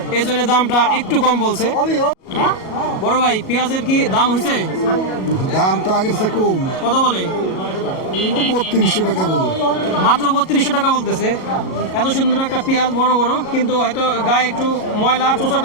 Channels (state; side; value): late; right; 37 ms